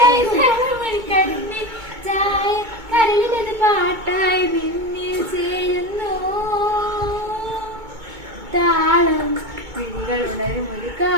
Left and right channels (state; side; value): late; left; 2.2 ms